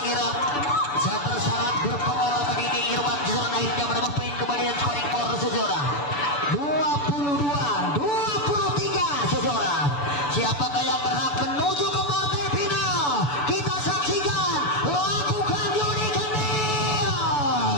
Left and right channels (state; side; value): late; right; 6.9 ms